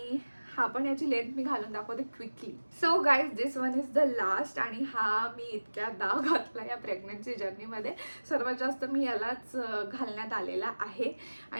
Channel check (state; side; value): inverted; both; correlation -1.00